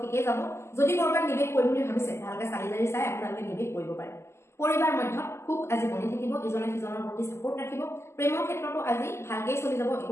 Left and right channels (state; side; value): late; right; 0.13 ms